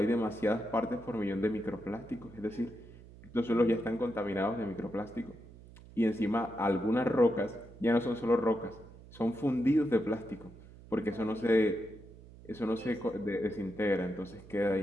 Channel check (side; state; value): right; noise; hum, 19 dB below the sound